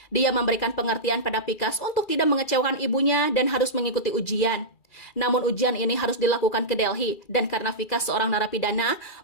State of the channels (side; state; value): right; late; 2.4 ms